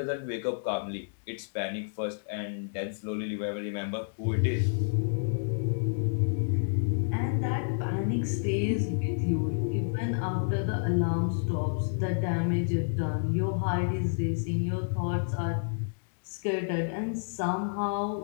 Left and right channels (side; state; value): right; silent; digital silence